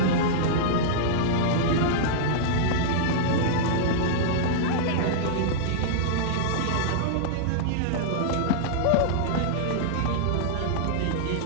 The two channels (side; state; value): both; different; correlation -0.02